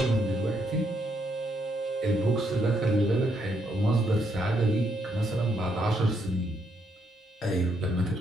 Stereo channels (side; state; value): both; normal; correlation 0.75